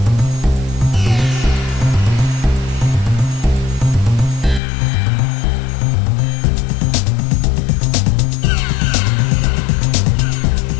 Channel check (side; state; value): right; drops out; at 4.6 s